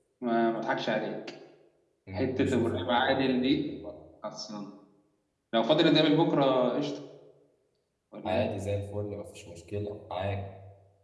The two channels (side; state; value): both; identical; correlation 1.00